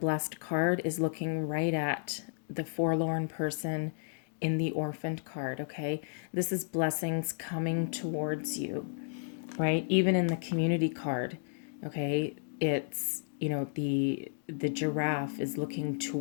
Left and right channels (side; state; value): right; silent; digital silence